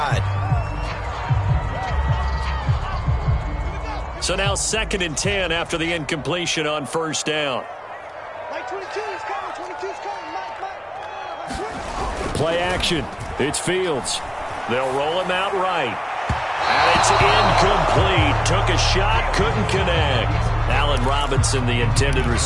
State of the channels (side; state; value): both; identical; correlation 1.00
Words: So now 2nd and 10 after the incompletion on first down. Play action. It's Fields. They'll roll him out right. And it's incomplete. Took a shot, couldn't connect. Allen Robinson, the intended